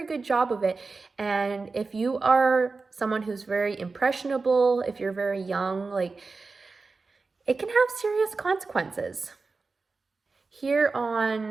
good job of it. And if you are someone who's very impressionable, if you're very young, it can have serious consequences. Here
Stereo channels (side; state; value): left; quieter; 4.1 dB